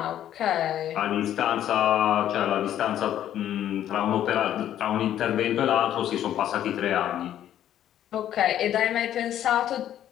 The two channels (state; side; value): quieter; right; 11.3 dB